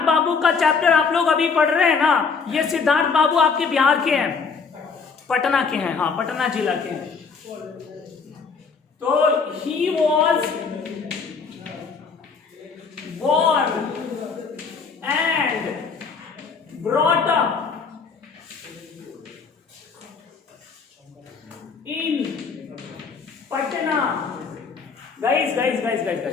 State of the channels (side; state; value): right; quieter; 5.3 dB